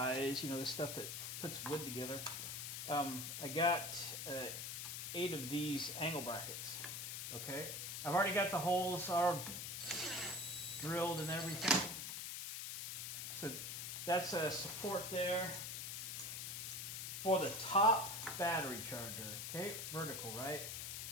the stuff that puts wood together, I got 8 of these angle brackets. Okay, I've already got the holes are drilled and everything. So that's a support there for the top battery charger. Okay, vertical, right?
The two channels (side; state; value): left; noise; hiss, 5 dB below the sound